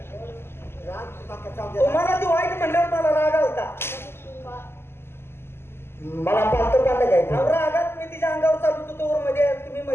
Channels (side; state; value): right; late; 0.12 ms